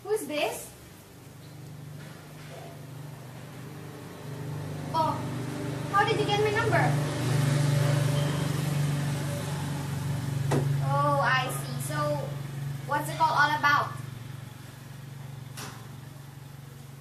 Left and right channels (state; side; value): identical; both; correlation 1.00